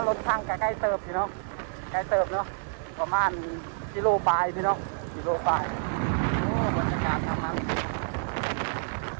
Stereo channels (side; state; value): left; silent; digital silence